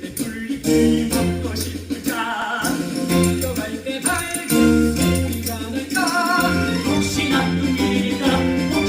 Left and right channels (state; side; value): identical; both; correlation 1.00